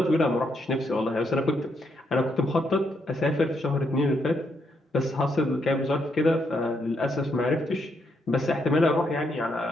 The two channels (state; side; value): normal; both; correlation 0.77